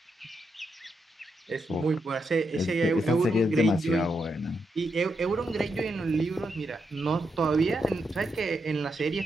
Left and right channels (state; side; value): normal; both; correlation 0.83